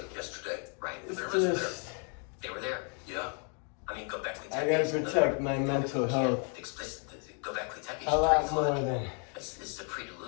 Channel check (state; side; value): quieter; right; 39.5 dB